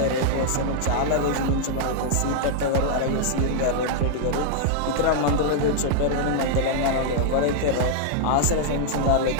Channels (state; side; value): different; both; correlation -0.01